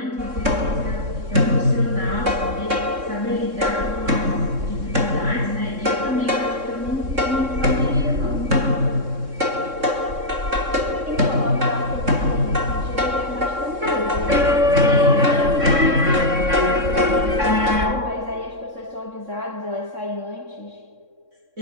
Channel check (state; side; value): late; left; 3.6 ms